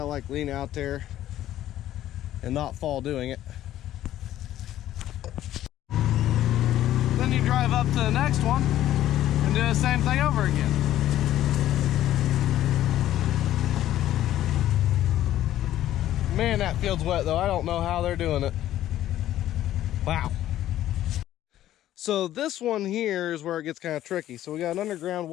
like lean out there and not fall doing it. Then you drive up to the next one and do the same thing over again. Man, that field's wet though. I don't know how they're doing it. Wow. So this one here is where it gets kind of tricky. So we got an underground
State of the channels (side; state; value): right; quieter; 13.0 dB